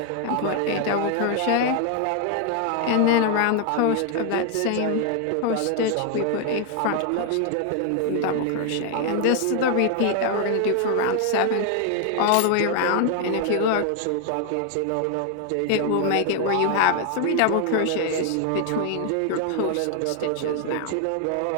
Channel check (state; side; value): different; both; correlation 0.00